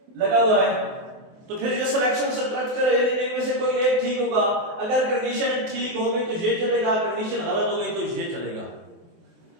लगा हुआ है तो फिर ये सिलेक्शन सब्ट्रैक्ट करें, इनमें से कोई एक ठीक होगा, अगर कंडीशन ठीक हो गई तो ये चलेगा, कंडीशन गलत हो गई तो ये चलेगा।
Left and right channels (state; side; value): late; left; 24 ms